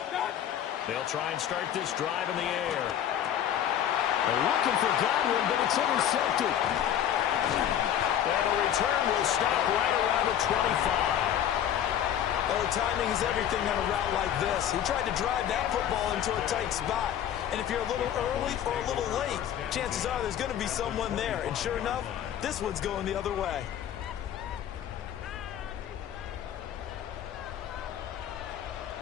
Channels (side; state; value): right; quieter; 10.3 dB